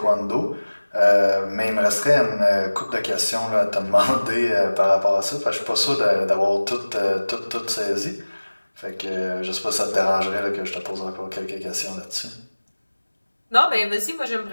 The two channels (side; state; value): both; inverted; correlation -1.00